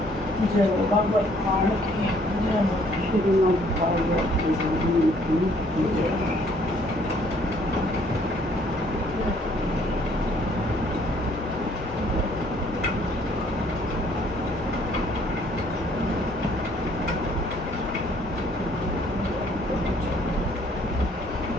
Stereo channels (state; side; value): normal; both; correlation 0.62